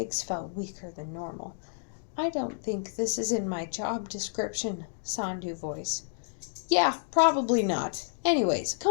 felt weaker than normal. I don't think this is in my job description, Sandhu voice. Yeah, probably not. Anyways,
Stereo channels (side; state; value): right; silent; digital silence